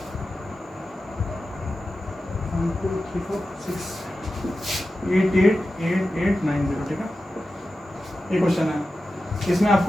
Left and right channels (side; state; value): both; normal; correlation 0.93